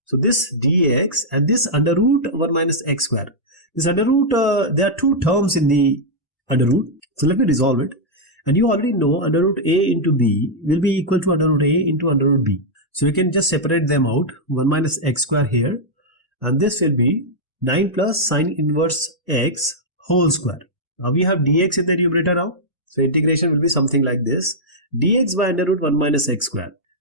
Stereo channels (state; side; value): normal; both; correlation -0.06